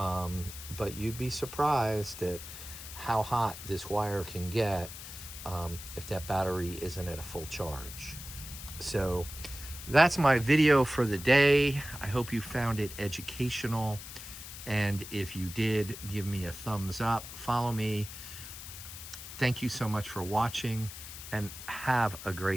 you'd be surprised at how hot this wire can get if that battery isn't at a full charge. So that's my video for the day. I hope you found it educational. And if you did, give me a thumbs up, follow me. Thank you so much for watching, and have a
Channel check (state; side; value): noise; left; hiss, 12 dB below the sound